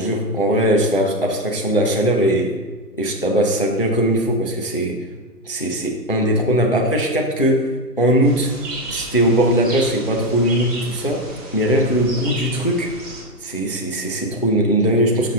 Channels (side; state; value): both; normal; correlation 0.11